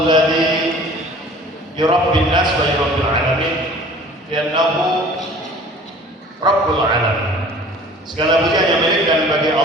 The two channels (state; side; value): normal; both; correlation 0.47